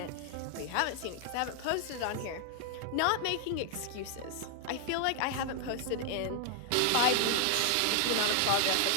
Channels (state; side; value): different; both; correlation 0.00